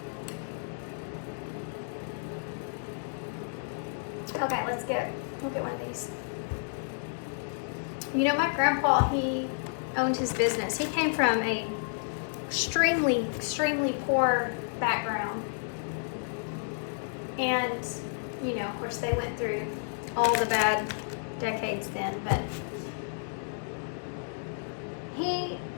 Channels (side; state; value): right; silent; digital silence